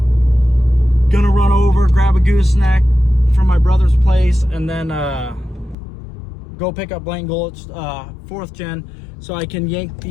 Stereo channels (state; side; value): drops out; right; at 5.8 s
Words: gonna run over, grab a gooseneck from my brother's place, and then go pick up Blaine Gulch 4th gen so I can yank